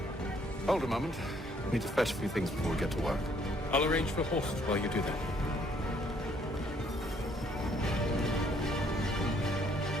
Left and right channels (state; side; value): normal; both; correlation 0.65